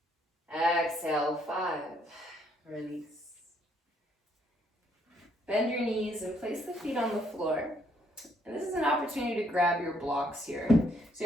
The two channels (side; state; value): both; normal; correlation 0.69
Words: Exhale, 5. Release. Bend your knees and place the feet on the floor. And this is an opportunity to grab your blocks here. So